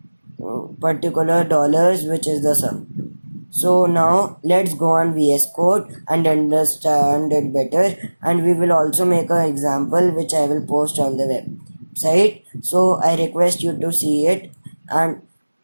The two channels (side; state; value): both; inverted; correlation -1.00